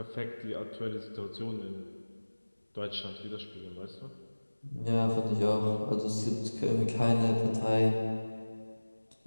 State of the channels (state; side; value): inverted; both; correlation -1.00